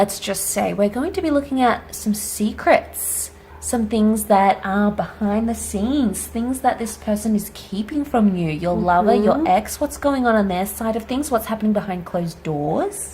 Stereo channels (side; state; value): both; identical; correlation 1.00